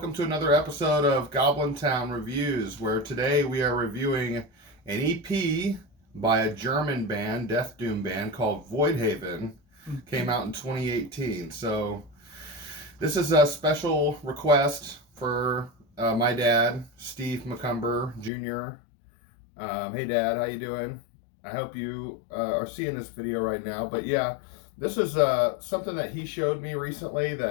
to another episode of Goblin Town Reviews, where today we are reviewing an EP by a German band, Deathdoom band, called Voidhaven. Came out in 2018. So this is a special request for my dad, Steve McCumber Jr. Hey, Dad, how you doing? I hope you are seeing this video right now. But yeah, this is something that he showed me recently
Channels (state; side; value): drops out; right; at 18.3 s